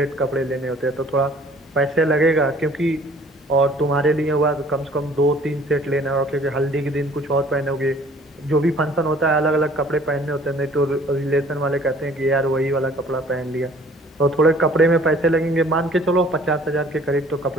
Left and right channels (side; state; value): both; normal; correlation 0.54